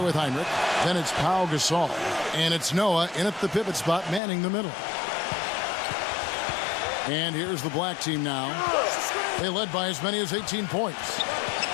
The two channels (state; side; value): drops out; right; at 4.2 s